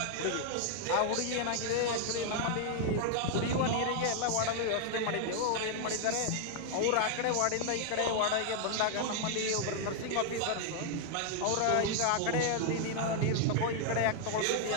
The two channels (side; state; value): both; different; correlation 0.00